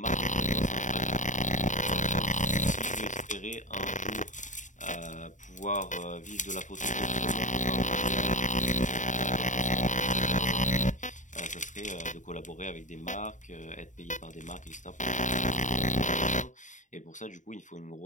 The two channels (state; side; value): late; right; 0.36 ms